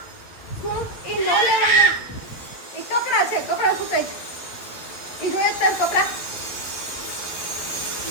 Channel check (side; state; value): right; late; 11 ms